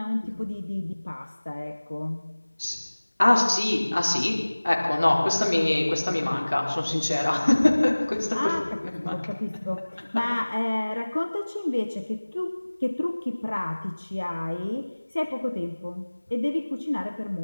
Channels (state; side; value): inverted; both; correlation -1.00